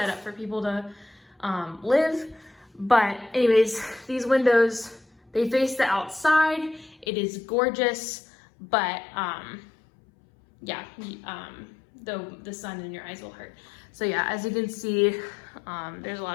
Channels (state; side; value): drops out; right; at 7.1 s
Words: up for people to live. But anyways, these windows, they face the outside. It is gorgeous, but yeah, the sun in your eyes will hurt. So yeah, as you can see, there's a